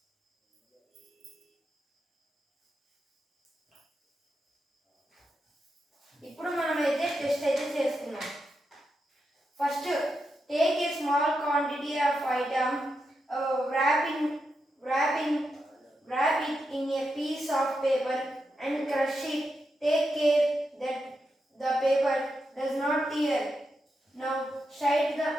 ఇప్పుడు మనమైతే టెస్ట్ అయితే చేసుకున్నాం. First take a small quantity of item, wrap it in a piece of paper and crush it. Take care that the paper does not tear. Now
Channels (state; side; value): normal; both; correlation 0.86